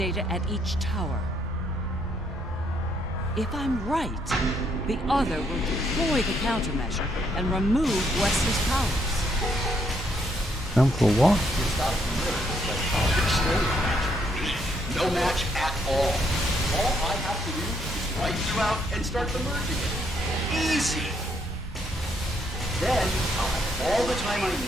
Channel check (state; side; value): normal; both; correlation 0.73